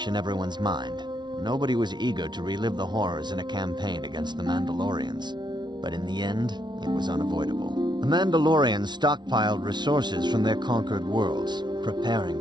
in everyone's mind. Nobody was eager to relive the horrors in a campaign against the Mandalorians. But in the end, it was unavoidable. The Mandalorians stockpiled resources from their conquered worlds, preparing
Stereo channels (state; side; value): late; left; 0.21 ms